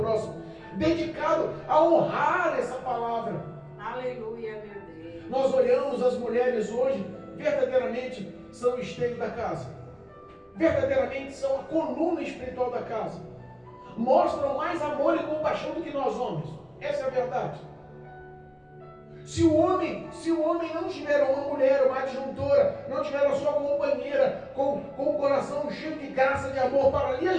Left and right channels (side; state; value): both; identical; correlation 1.00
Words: dedicado a honrar essa palavra. Aleluia, meu Deus. Nós olhamos as mulheres hoje, verdadeiramente são o esteio da casa, verdadeiramente são a coluna espiritual da casa, mostram mais amor e compaixão do que nós homens. Essa é a verdade. Se o homem não tiver uma mulher, uma adjuntora, não tiver a sua companheira com o coração cheio de graça, de amor para lhe